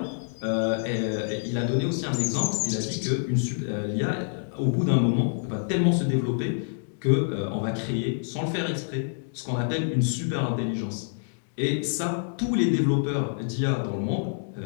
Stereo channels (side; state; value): right; silent; digital silence